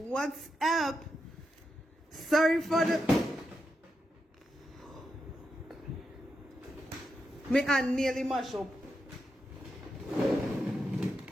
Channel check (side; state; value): both; normal; correlation 0.86